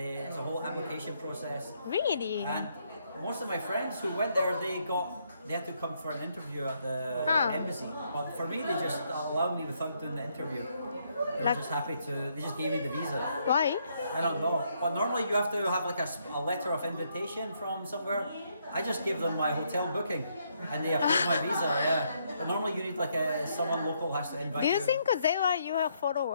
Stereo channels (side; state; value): both; inverted; correlation -0.74